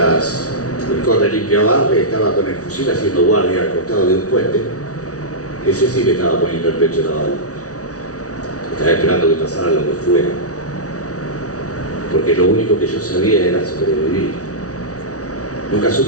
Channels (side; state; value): right; late; 0.67 ms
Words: el corre limpia barre estaba con el fusil haciendo guardia al costado de un puente, ese sí que estaba poniendo el pecho en la bala. Estaba esperando que pasara lo que fuera. Porque lo único que yo sabía era sobrevivir. Nunca